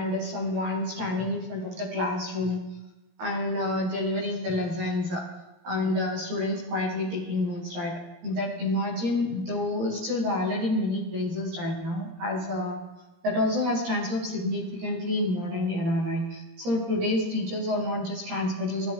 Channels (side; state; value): left; late; 17 ms